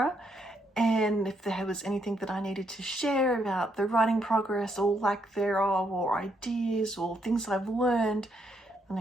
and if there was anything that I needed to share about the writing progress or lack thereof, or ideas or things I've learned, then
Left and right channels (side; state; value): both; normal; correlation 0.75